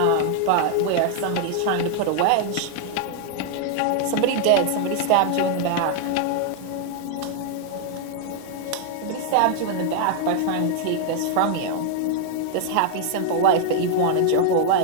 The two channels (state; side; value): different; both; correlation 0.00